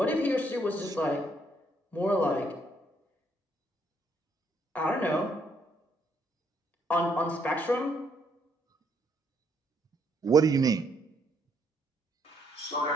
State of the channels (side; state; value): both; normal; correlation 0.71